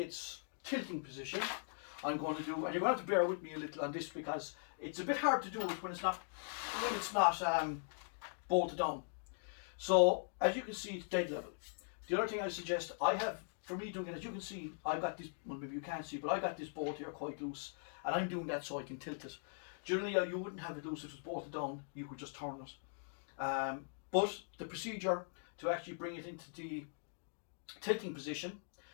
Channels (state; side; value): silent; right; digital silence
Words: tilting position, I'm going to do, and you're going to have to bear with me a little on this because it's a bit hard to do it when it's not bolted down. So as you can see, it's dead level. The other thing I suggest, for me doing it, as you can see, I got this, well maybe you can't see, but I got this bolt here quite loose, and I'm doing that so I can tilt it. Generally you wouldn't have it loose if it was bolted down, you could just turn it. But the procedure to actually bring it into the tilting position